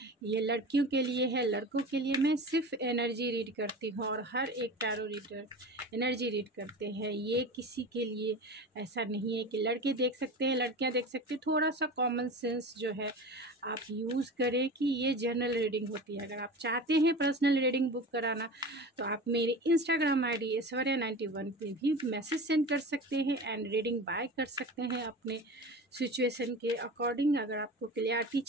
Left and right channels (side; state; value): both; normal; correlation 0.32